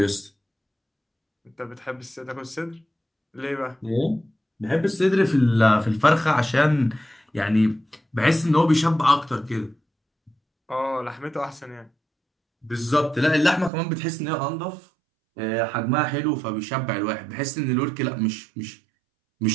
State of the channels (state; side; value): drops out; left; at 13.7 s